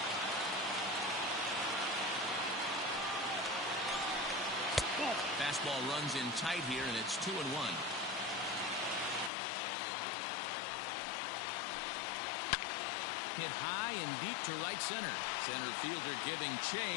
Fastball runs in tight here, and it's 2-1. Hit high and deep to right center. Center fielder giving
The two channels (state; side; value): drops out; right; at 9.3 s